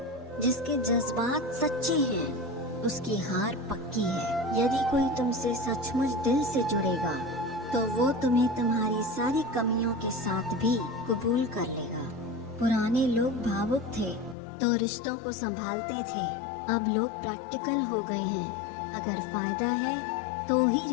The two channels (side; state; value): right; drops out; at 14.4 s